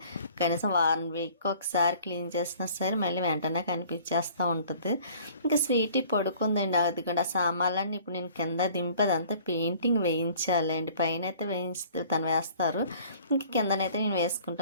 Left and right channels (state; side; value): inverted; both; correlation -0.52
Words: కనీసం వారం వీక్ ఒకసారి క్లీన్ చేసినా సరే మళ్ళీ వెంటనే కనిపించేస్తూ ఉంటుంది. ఇంకా స్వీటీ పడుకుందండి. అది కూడా సామాన్లన్నీ ఇప్పుడు నేను కింద దింపేది అంతా పెయింటింగ్ వేయించాలండి. పైన అయితే తను వేస్తారు, ఇంకా కిందనైతే నేను